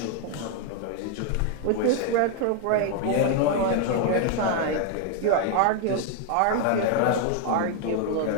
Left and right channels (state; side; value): different; both; correlation 0.00